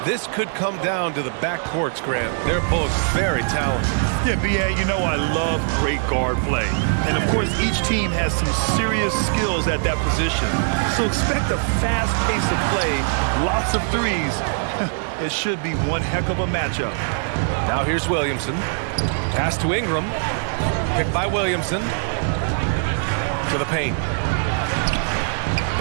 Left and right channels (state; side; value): silent; left; digital silence